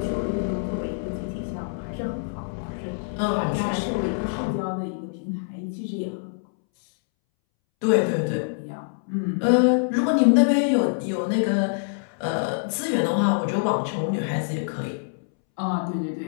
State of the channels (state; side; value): silent; right; 62 dB below the other